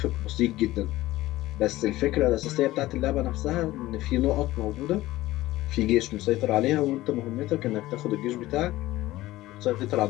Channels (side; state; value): right; quieter; 16.9 dB